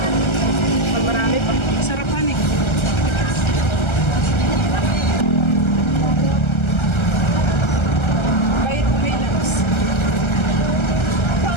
Pag marami pa. Sarapan eh. Kahit may labs.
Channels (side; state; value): right; late; 1.3 ms